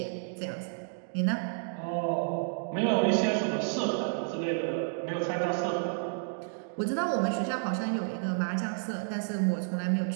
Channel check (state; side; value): silent; left; digital silence